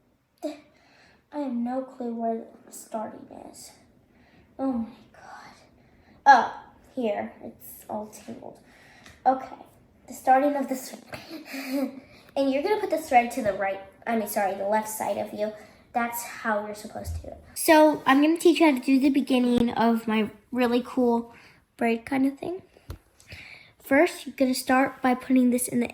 I have no clue where the starting is. Oh my god. Oh, here. It's all tangled. Okay. The starting of the thread. And you're going to put the thread to the the left side of you. That's how you're supposed to do it. So I'm going to teach you how to do the beginning of my really cool braid kind of thing. First, you're going to start by putting this in the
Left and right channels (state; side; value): identical; both; correlation 1.00